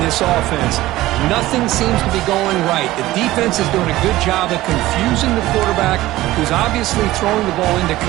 this offense. Nothing seems to be going right. The defense is doing a good job of confusing the quarterback, who's obviously throwing the ball into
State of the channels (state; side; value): quieter; left; 16.8 dB